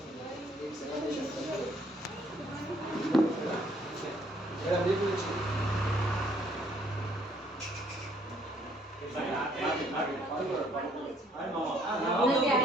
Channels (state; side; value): normal; both; correlation 0.65